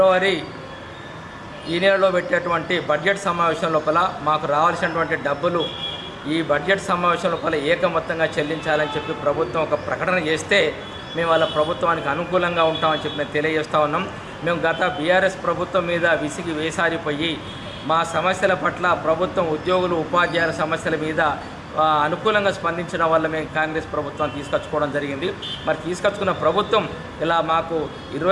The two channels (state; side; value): identical; both; correlation 1.00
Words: ఈ నెలలో పెట్టేటువంటి బడ్జెట్ సమావేశం లోపల మాకు రావాల్సినటువంటి డబ్బులు ఈ బడ్జెట్ సమావేశం లోపల ఏకమొత్తంగా చెల్లించాలని చెప్పి ప్రభుత్వం ఒక ప్రకటన చేస్తే మేము వాళ్ళ ప్రభుత్వానికి అనుకూలంగా ఉంటామని చెప్పి మేము తెలియజేస్తూ ఉన్నాం. మేము గత బీఆర్ఎస్ ప్రభుత్వం మీద విసిగి వేసారిపోయి మా సమస్యల పట్ల ప్రభుత్వం, ఉద్యోగులు, ఉపాధ్యాయుల సమస్యల మీద అనుకూలంగా స్పందించడం వల్ల మేము కాంగ్రెస్ ప్రభుత్వాన్ని తీసుకొచ్చుకోవడం జరిగింది. మరి తీసుకొచ్చుకున్న ప్రభుత్వం ఇలా మాకు